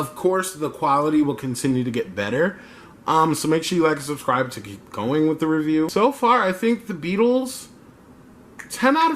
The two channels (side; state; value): both; identical; correlation 1.00